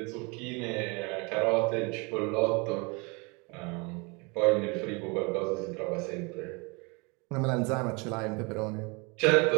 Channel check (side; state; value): left; quieter; 29.3 dB